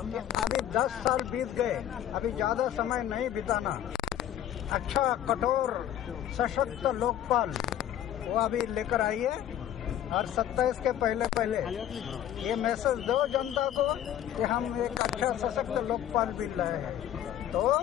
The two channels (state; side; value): quieter; right; 11.3 dB